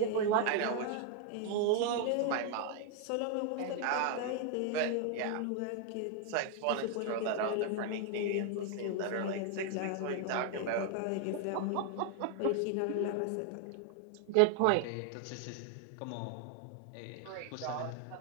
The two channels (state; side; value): different; both; correlation 0.00